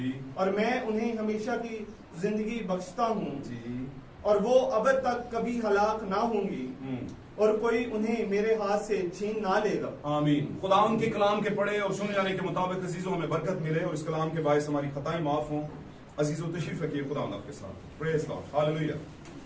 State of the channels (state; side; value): identical; both; correlation 1.00